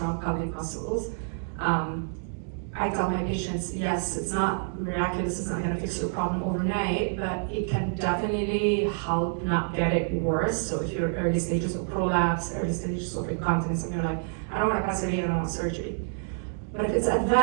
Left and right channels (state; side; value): silent; left; 60 dB below the other